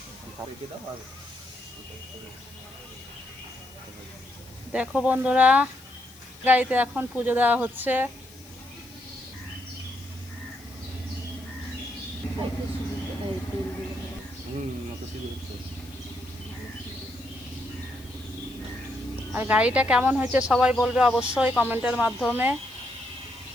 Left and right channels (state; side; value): noise; left; hiss, 22 dB below the sound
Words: রেখে দাও। আর দেখো বন্ধুরা, গাড়িতে এখন পুজো দেওয়া হচ্ছে। আর গাড়িটা কেমন হয়েছে সবাই বলবে অবশ্যই কমেন্টের মাধ্যমে।